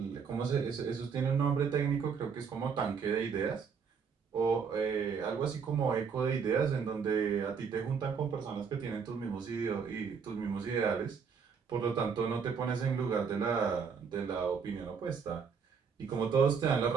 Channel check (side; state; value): left; quieter; 6.2 dB